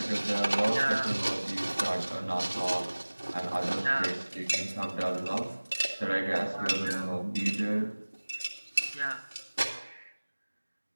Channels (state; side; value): inverted; both; correlation -1.00